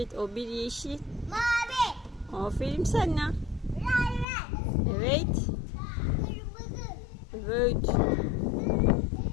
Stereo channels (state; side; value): drops out; right; at 4.2 s